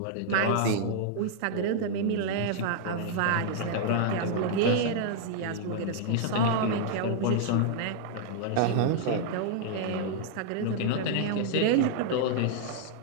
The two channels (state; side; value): different; both; correlation -0.01